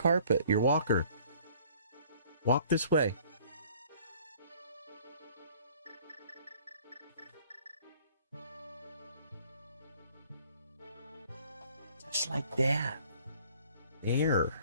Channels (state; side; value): inverted; both; correlation -0.55